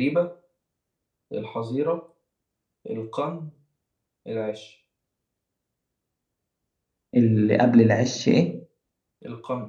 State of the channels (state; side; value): identical; both; correlation 1.00